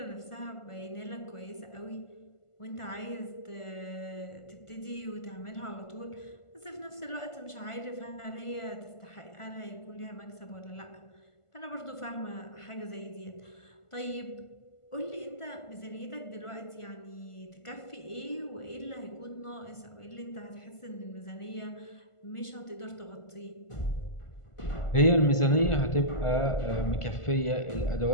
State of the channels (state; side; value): late; right; 1.5 ms